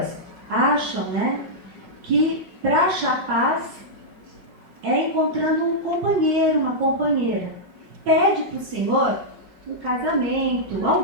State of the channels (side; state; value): left; late; 5.4 ms